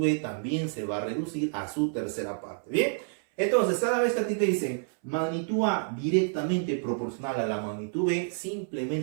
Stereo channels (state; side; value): silent; left; 59 dB below the other